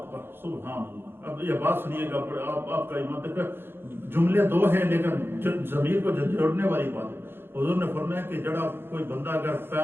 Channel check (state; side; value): late; left; 0.11 ms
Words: سبحان اللہ۔ اب یہ بات سنیے گا، آپ کا ایمان تک جملے دو ہیں لیکن ضمیر کو جوڑنے والی بات ہے۔ حضور نے فرمایا کہ جڑا کوئی بندہ اگر